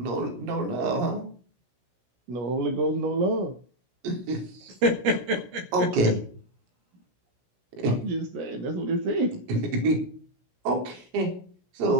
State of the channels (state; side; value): late; left; 16 ms